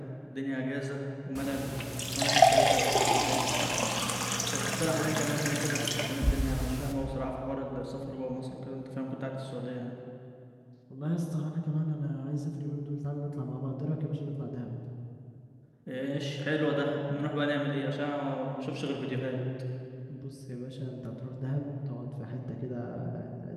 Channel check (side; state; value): both; identical; correlation 1.00